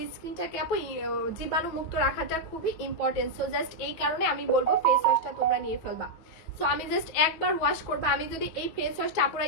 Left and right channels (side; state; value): right; late; 9.3 ms